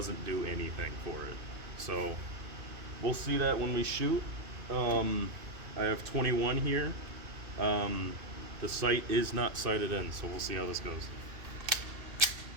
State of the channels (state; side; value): late; left; 2.6 ms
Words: do anything for it. So we'll see that when we shoot. I have 21 here. The sight is not sighted in, so we'll see how this goes.